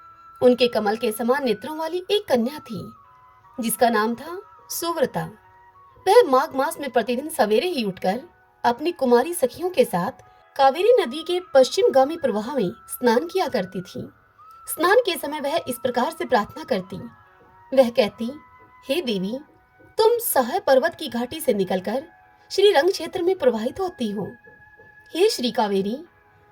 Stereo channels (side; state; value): both; identical; correlation 1.00